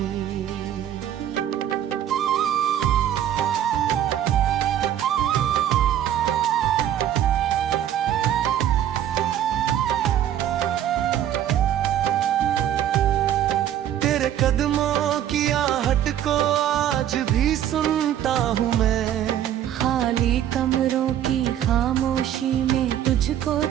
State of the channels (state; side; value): quieter; left; 10.9 dB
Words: तेरे कदमों की आहट को आज भी सुनता हूँ मैं। खाली कमरों की खामोशी में तुझको